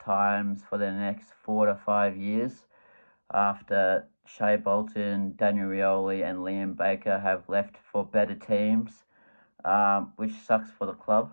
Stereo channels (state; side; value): inverted; both; correlation -1.00